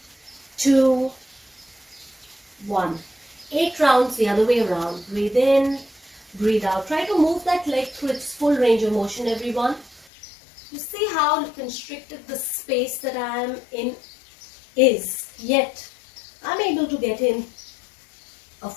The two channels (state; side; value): drops out; right; at 10.1 s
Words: 2, 1. 8 rounds the other way around. Breathe in, breathe out. Try to move that leg through its full range of motion, everyone. You see how constricted the space that I am in is. Yet, I'm able to get in a